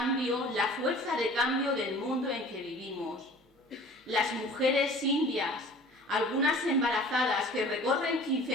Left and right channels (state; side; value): normal; both; correlation 0.46